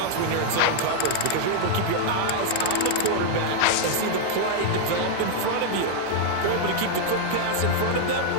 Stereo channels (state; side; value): different; both; correlation -0.01